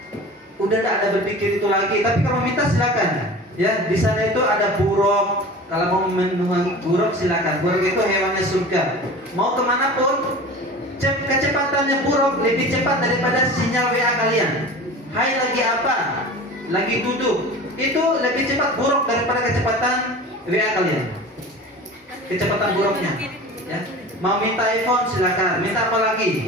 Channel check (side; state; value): both; normal; correlation 0.37